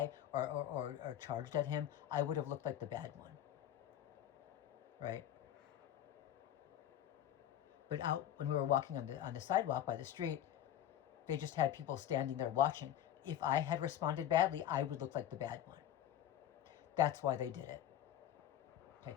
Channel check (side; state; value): right; quieter; 11.3 dB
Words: or charged at him, I would have looked like the bad one. Right? But out when we were walking on the sidewalk by the street, they just had people standing there watching. If I had responded badly, I would look like the bad one. That's why they did it. Okay.